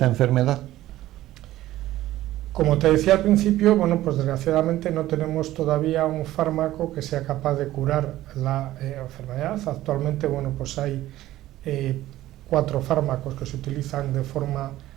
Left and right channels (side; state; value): left; quieter; 15.0 dB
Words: enfermedad? Como te decía al principio, bueno, pues desgraciadamente no tenemos todavía un fármaco que sea capaz de curar la enfermedad. Actualmente, bueno, pues hay 4 fármacos que se utilizan de forma